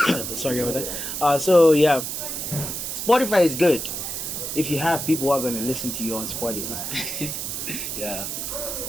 Sorry about that. So yeah, Spotify is good if you have people who are going to listen to you on Spotify. Yeah.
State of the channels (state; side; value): noise; right; hiss, 4 dB below the sound